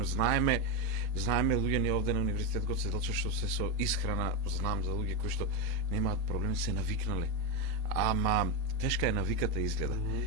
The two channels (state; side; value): late; left; 4.2 ms